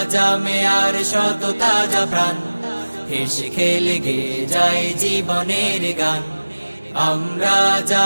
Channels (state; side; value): inverted; both; correlation -1.00